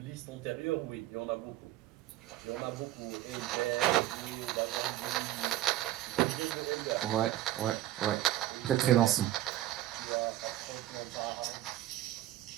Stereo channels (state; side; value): quieter; left; 14.2 dB